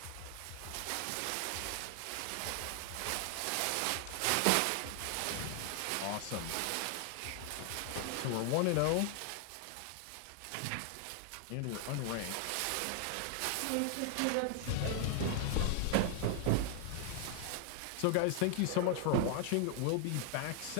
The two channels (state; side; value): different; both; correlation 0.00